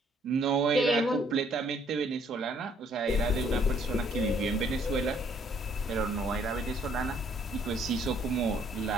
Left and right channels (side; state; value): both; normal; correlation 0.64